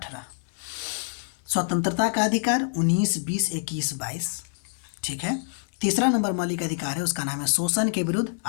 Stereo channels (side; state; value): right; silent; 61 dB below the other